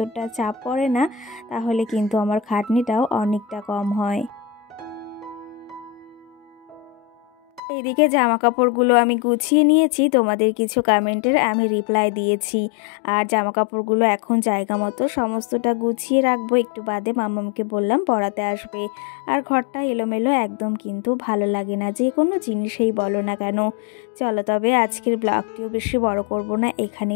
চাপ পড়ে না, তাহলে কিন্তু আমার খাটনিটাও অনেকটা কম হয়। এইদিকে জামা কাপড়গুলো আমি গুছিয়ে নিয়েছি, তোমাদের কিছু কমেন্টের আমি রিপ্লাই দিয়েছি। আর জামা কাপড়গুলো এখন জায়গা মতো সমস্তটা গুছিয়ে রাখবো, একটু বাদে মামামকে বললাম পড়াতে আসবে। আর ঘরটা এলোমেলো একদম কিন্তু ভালো লাগে না, যে কোনো জিনিসেই বলো না কেন। চলো তবে আজকের ব্লগটিও বেশি বড় করব না,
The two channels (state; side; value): drops out; right; at 7.6 s